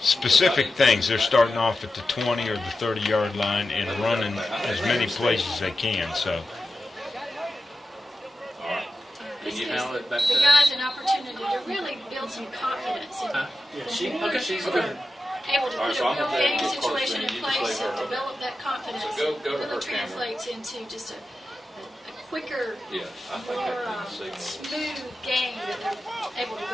things. They're starting off at the 20 or the 30-yard line and running as many plays as they can. So. This gives the guys an opportunity to really build some confidence and She's able to put a real game situation in place and develop that confidence. So go to really her translates into just a quicker, Yeah, I think more I can see. smooth game that they're able to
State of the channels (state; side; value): normal; both; correlation 0.92